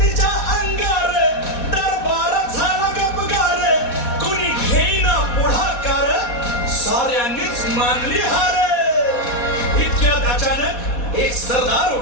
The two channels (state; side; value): late; right; 4.2 ms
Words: तिच्या अंगार, दरबारात झाला गपगार. कुणी घेईना पुढाकार, साऱ्यांनीच मानली हार. इतक्यात अचानक एक सरदार